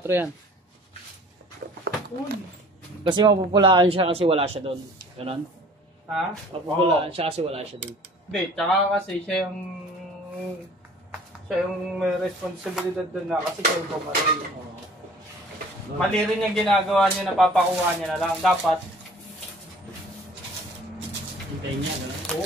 yan. Kasi mapupulaan siya kasi wala siya doon. Ganon? Ha? Mapupulaan siya kasi wala siya doon. Hindi, tsaka kasi siya yung may responsibilidad doon na kasi siya yung bumaril. Mali rin yung ginagawa niya, napapakuha niya na lang. Dapat, Hintayin niya, gano'n?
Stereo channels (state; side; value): normal; both; correlation 0.49